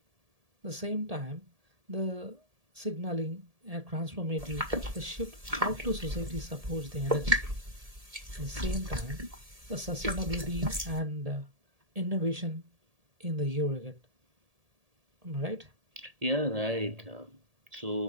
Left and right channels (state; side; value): late; left; 1.7 ms